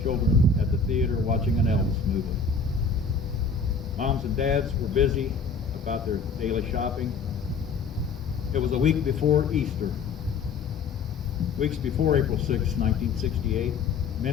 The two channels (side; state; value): right; quieter; 4.9 dB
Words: children at the theater watching an Elvis movie. Moms and dads were busy about their daily shopping. It was a week before Easter. Weeks before April 6, 1968,